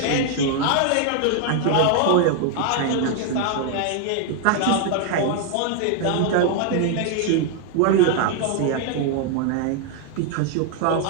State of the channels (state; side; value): different; both; correlation 0.00